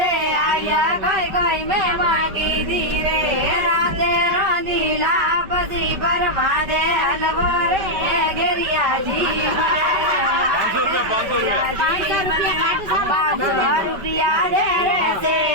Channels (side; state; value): left; late; 5.2 ms